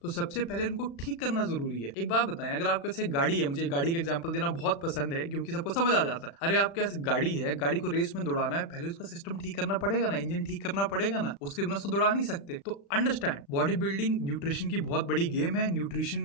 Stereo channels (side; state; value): right; late; 35 ms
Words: तो सबसे पहले उनको ठीक करना जरूरी है। एक बात बताएं, अगर आपके पास एक गाड़ी है, मुझे गाड़ी का एग्जांपल देना बहुत पसंद है क्योंकि सबको समझ आ जाता है। अरे आपके पास गाड़ी है, गाड़ी को रेस में दौड़ाना है, पहले उसका सिस्टम ठीक करना पड़ेगा ना, इंजन ठीक करना पड़ेगा ना, उसके बिना उसको दौड़ा नहीं सकते। तो अंडरस्टैंड, बॉडी बिल्डिंग न्यूट्रिशन की बहुत बड़ी गेम है। न्यूट्रिशन